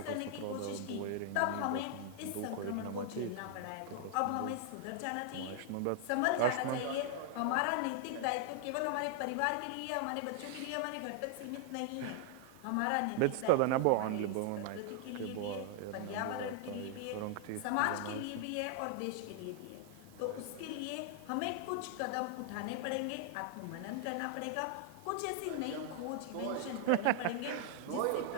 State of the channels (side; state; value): both; different; correlation 0.00